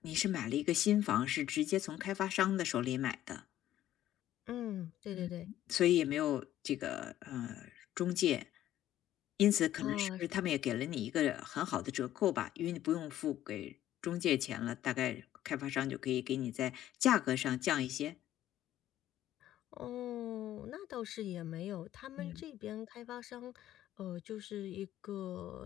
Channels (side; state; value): right; quieter; 12.8 dB